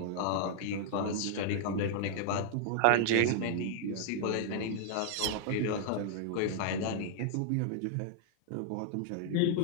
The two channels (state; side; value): different; both; correlation 0.00